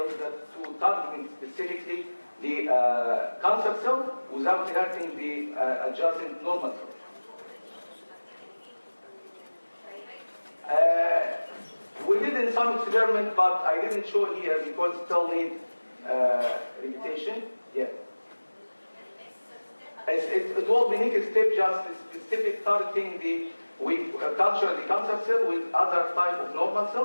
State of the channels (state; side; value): inverted; both; correlation -1.00